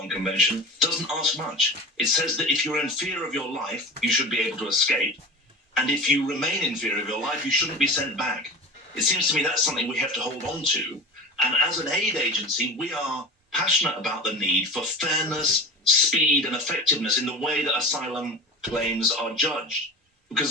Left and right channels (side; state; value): both; normal; correlation 0.31